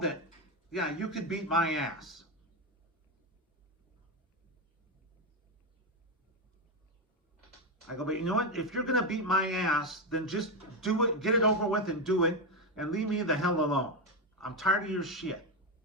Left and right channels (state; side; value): normal; both; correlation 0.09